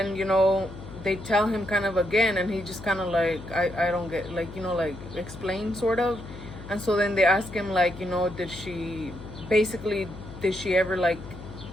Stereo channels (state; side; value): noise; left; hum, 14 dB below the sound